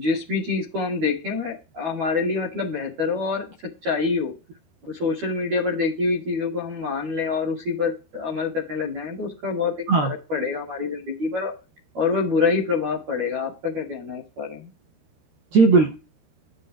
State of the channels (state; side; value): late; left; 12 ms